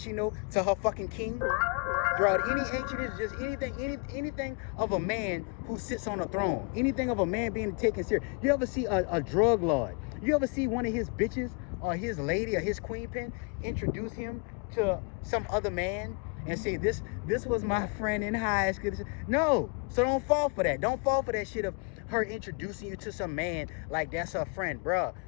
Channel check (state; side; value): quieter; right; 34.0 dB